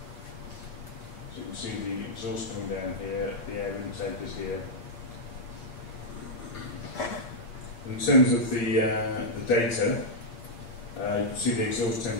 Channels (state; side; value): late; right; 8.4 ms